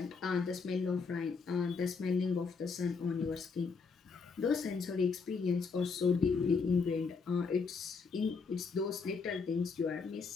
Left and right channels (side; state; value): right; quieter; 5.0 dB